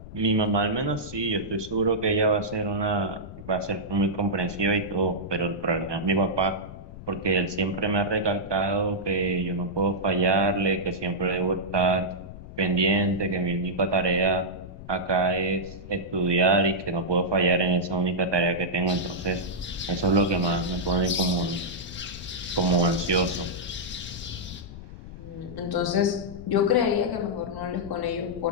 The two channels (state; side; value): noise; left; rumble, 14 dB below the sound